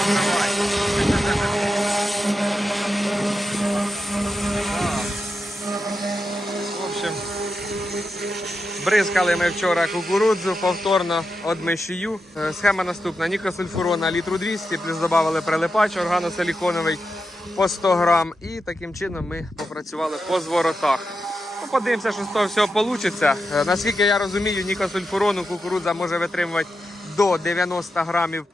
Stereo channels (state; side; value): normal; both; correlation 0.88